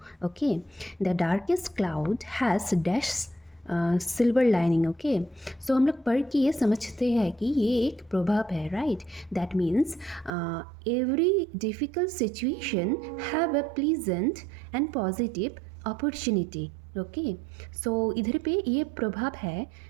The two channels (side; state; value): left; drops out; at 10.3 s